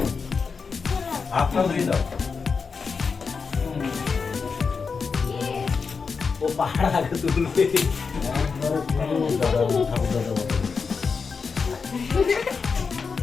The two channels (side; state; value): right; quieter; 5.2 dB